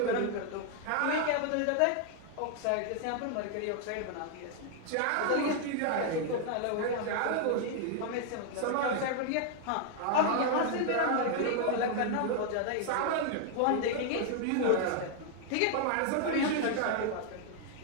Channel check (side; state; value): both; different; correlation 0.00